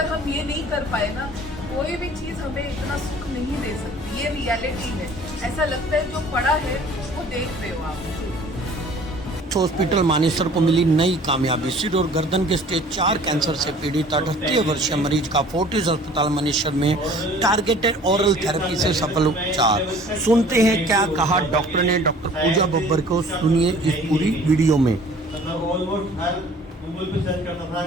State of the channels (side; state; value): both; normal; correlation 0.50